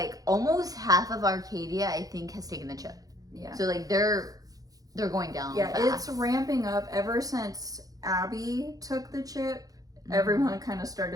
almost half of Arcadia, I think, has taken the chip. Yeah. So they're going down. Yeah, fast. It's ramping up ever since Abby took the chip. Everyone kind of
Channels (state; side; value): late; left; 0.17 ms